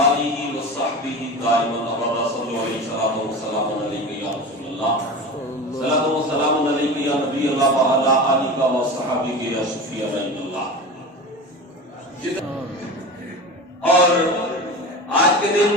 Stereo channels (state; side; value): normal; both; correlation 0.29